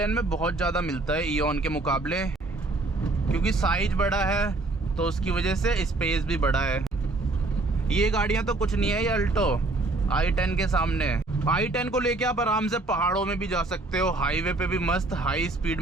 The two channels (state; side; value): quieter; left; 3.1 dB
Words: में बहुत ज़्यादा मिलता है इओन के मुकाबले, क्योंकि साइज बड़ा है तो उसकी वजह से स्पेस भी बड़ा है। ये गाड़ियाँ तो कुछ नहीं है, ये अल्टो i10 के सामने। i10 को लेके आप आराम से पहाड़ों में भी जा सकते हो, हाईवे पे भी मस्त हाई स्पीड